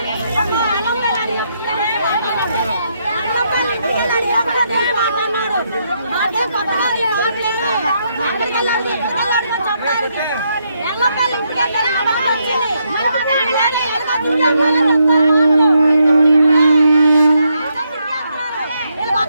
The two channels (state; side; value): inverted; both; correlation -0.78